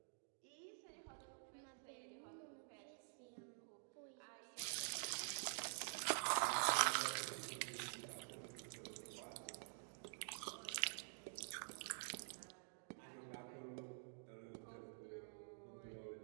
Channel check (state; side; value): silent; left; digital silence